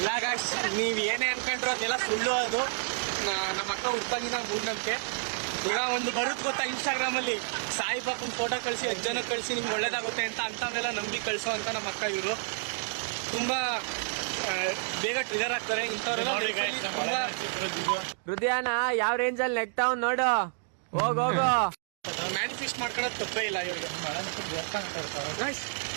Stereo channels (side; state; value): left; silent; digital silence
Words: ಗಾಯ್ಸ್ ನೀವ್ ಏನೇ ಅನ್ಕೊಂಡ್ರು ಅದೆಲ್ಲ ಸುಳ್ಳು. ಅದು ನಮ್ಮ ಅಕ್ಕ ಹುಡ್ತಾಗಿನ ಮೂಢನಂಬಿಕೆ. ಈಗ ಒಂದು ಬರುತ್ತೆ ಗೊತ್ತಾ ಇನ್ಸ್ಟಾಗ್ರಾಮ್ ಅಲ್ಲಿ ಸಾಯಿಬಾಬನ್ ಫೋಟೋ ಕಳಿಸಿ 10 ಜನ ಕಳಿಸಿ ನಿಮ್ಗೆ ಒಳ್ಳೇದಾಗುತ್ತೆ ಅಂತವನ್ನೆಲ್ಲ ನಂಬಿ ಕಳಿಸೋ ಅಂತ ನಮ್ಮ ಅಕ್ಕ. ಇವರು ತುಂಬಾ ಬೇಗ ಟ್ರಿಗರ್ ಆಗ್ತಾರೆ ಇಂಥವ್ರೆಲ್ಲ. ಹೃದಯನ ಯಾವ ರೇಂಜ್ ಅಲ್ಲಿ ನೆಕ್ತಾವ್ ನೋಡು. ಹೋಗು ಮ್ಯಾನಿಫೆಸ್ಟ್ ಮಾಡ್ಕೊಳ್ಳೋದು ತಪ್ಪೇ ಇಲ್ಲ ಇವ್ರಿಗೆ.